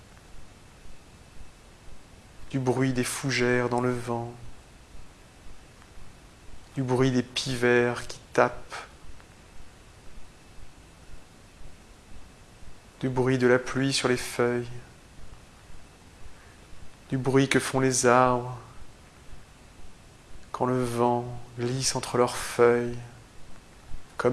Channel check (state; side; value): identical; both; correlation 1.00